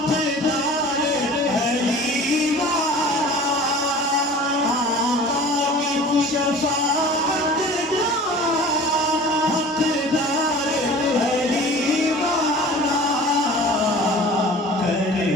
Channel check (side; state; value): both; normal; correlation 0.43